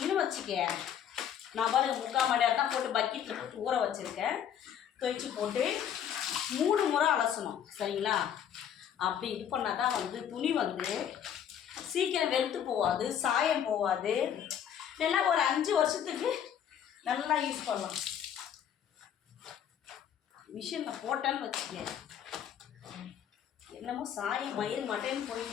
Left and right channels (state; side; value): quieter; right; 9.2 dB